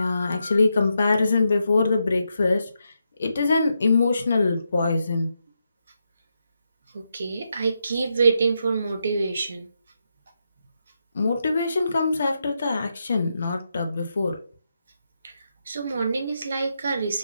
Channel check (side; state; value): both; inverted; correlation -0.84